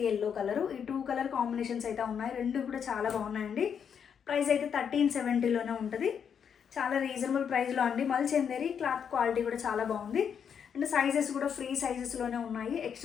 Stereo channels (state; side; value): quieter; right; 7.5 dB